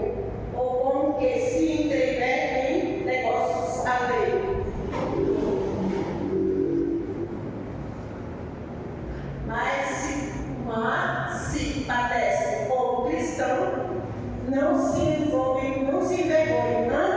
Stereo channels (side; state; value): both; identical; correlation 1.00